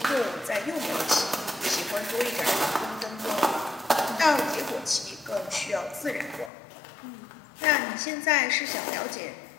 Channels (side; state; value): right; drops out; at 6.5 s